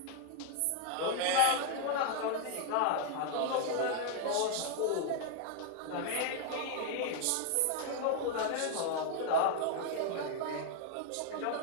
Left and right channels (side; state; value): both; different; correlation 0.00